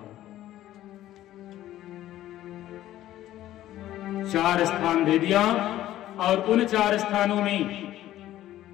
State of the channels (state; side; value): quieter; right; 13.7 dB